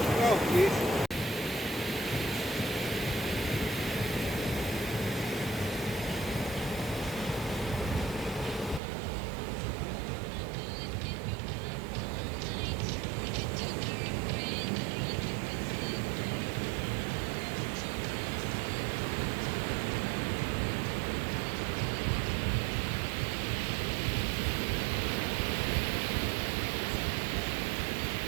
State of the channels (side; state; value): left; drops out; at 8.8 s